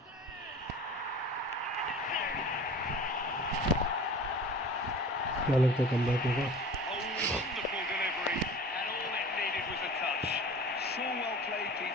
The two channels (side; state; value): both; normal; correlation 0.40